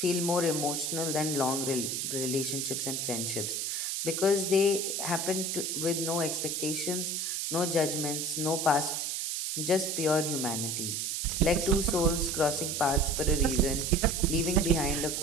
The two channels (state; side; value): noise; right; hiss, 1 dB below the sound